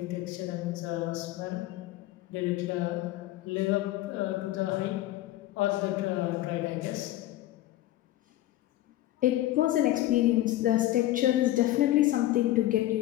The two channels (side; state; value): right; quieter; 15.2 dB